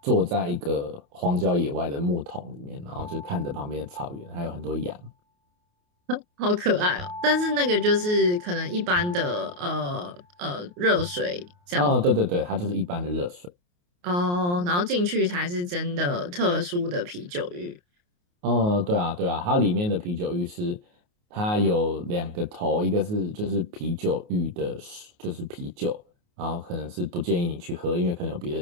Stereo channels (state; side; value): late; left; 28 ms